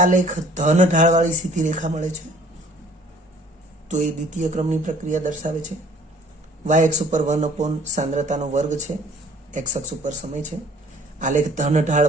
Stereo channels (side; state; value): both; normal; correlation 0.55